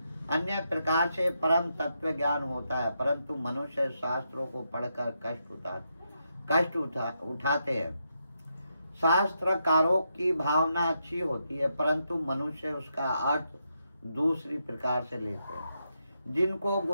अन्य प्रकार से परम तत्व ज्ञान होता है, परंतु मनुष्य शास्त्रों को पढ़कर कष्ट उठाते हैं। शास्त्रकारों की भावना अच्छी होती है, परंतु मनुष्य उसका अर्थ दूसरी प्रकार से लेते हैं। जिनको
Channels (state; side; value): inverted; both; correlation -0.82